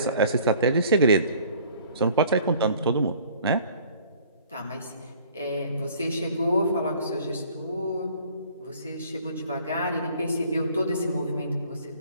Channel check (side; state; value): both; inverted; correlation -0.53